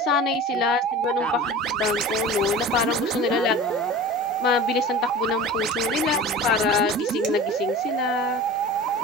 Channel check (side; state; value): both; normal; correlation 0.37